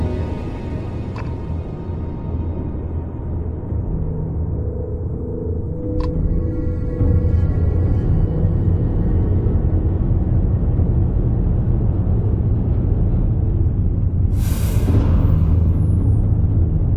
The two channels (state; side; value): identical; both; correlation 1.00